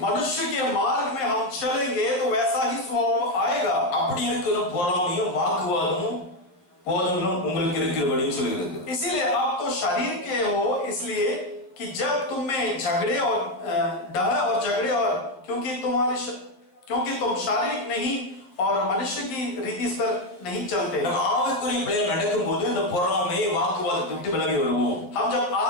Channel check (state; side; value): late; right; 11 ms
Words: मनुष्य के मार्ग में हम चलेंगे तो वैसा ही स्वभाव आएगा। அப்படி இருக்கிற பொறாமையும் வாக்குவாதமும் போதங்களும் உங்களுக்கு இருக்கிறபடின்னு சொல்லுகிறது. इसीलिए आप तो शरीर के हो, इसलिए कि जब तुम में झगड़े और डह और झगड़े और क्योंकि तुम शारीरिक नहीं और मनुष्य की रीति पर नहीं चलते। ஆவிக்குரிய பிள்ளைகள் நடக்கும்போது இந்த பொறாமை வாக்குவாதத்தை விட்டு விலகி வருவோம். हम जब